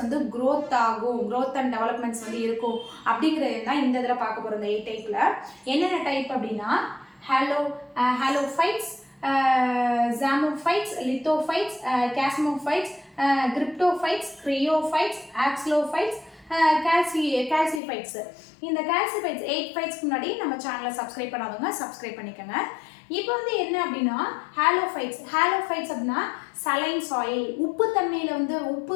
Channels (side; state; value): right; drops out; at 17.8 s